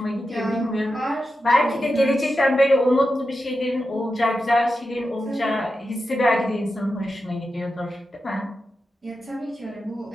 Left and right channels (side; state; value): both; normal; correlation 0.90